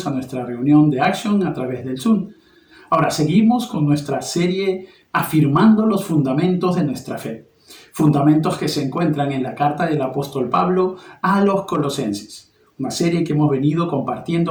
a nuestra reunión de Action a través del Zoom. Ahora seguimos con nuestra serie Afirmando los fundamentos de nuestra fe. Fundamentos que se encuentran en la carta del apóstol Pablo a los Colosenses. Una serie que hemos venido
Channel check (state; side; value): identical; both; correlation 1.00